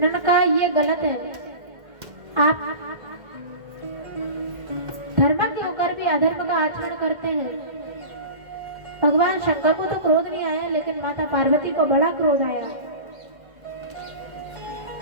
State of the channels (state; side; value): late; left; 1.7 ms